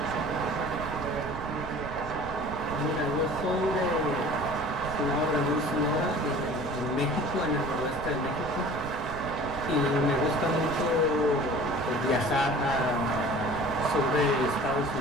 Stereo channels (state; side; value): noise; right; rumble, 11 dB below the sound